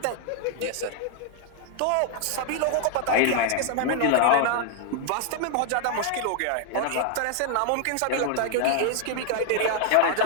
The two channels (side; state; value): both; different; correlation 0.00